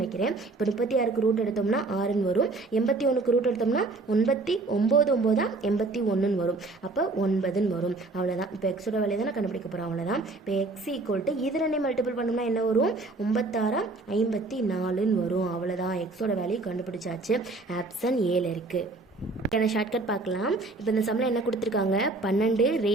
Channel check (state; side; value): quieter; left; 3.3 dB